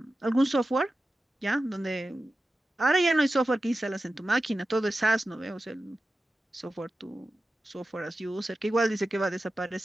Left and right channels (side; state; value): both; normal; correlation 0.93